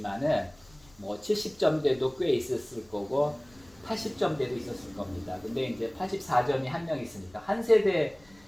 70점대도 꽤 있었을 거고 80점대도 있었을 겁니다. 근데 이제 84점이 한 명 있으니까 한 세대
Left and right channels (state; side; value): noise; left; rumble, 28 dB below the sound